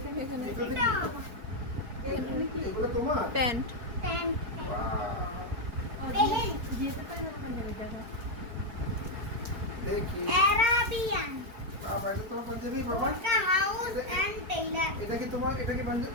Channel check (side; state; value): left; late; 4.3 ms